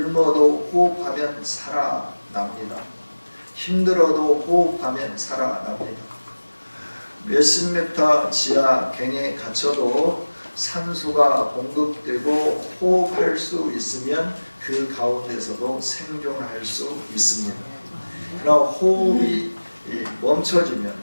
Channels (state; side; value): inverted; both; correlation -1.00